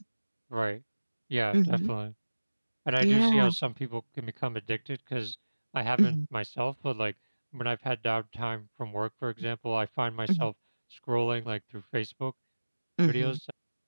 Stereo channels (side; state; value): both; inverted; correlation -1.00